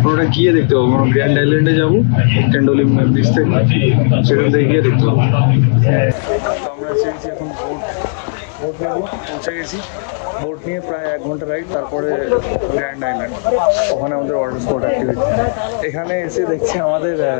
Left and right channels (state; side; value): silent; right; digital silence